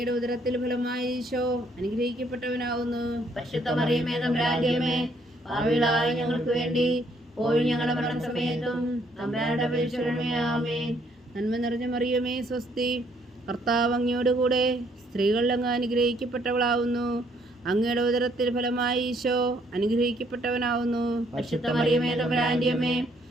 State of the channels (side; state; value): both; normal; correlation 0.68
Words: ഉദരത്തിൽ ഫലമായി ഈശോ അനുഗ്രഹിക്കപ്പെട്ടവനാവുന്നു. പരിശുദ്ധ മറിയമേ, തമ്പുരാന്റെ അമ്മേ, പാപികളായ ഞങ്ങൾക്ക് വേണ്ടി ഇപ്പോൾ ഞങ്ങളുടെ മരണസമയത്തും തമ്പുരാന്റെ അപേക്ഷിച്ചുകൊള്ളണമേ. ആമേൻ. നന്മ നിറഞ്ഞ മറിയമേ, സ്വസ്തി. കർത്താവ് അങ്ങയോടുകൂടെ സ്ത്രീകളിൽ അങ്ങ് അനുഗ്രഹിക്കപ്പെട്ടവളാവുന്നു. അങ്ങയുടെ ഉദരത്തിൽ ഫലമായി ഈശോ അനുഗ്രഹിക്കപ്പെട്ടവനാവുന്നു. പരിശുദ്ധ മറിയമേ തമ്പുരാന്റെ അമ്മേ,